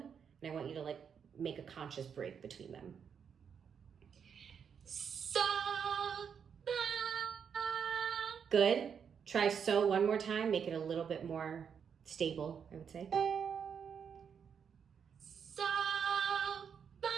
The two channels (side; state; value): left; quieter; 7.2 dB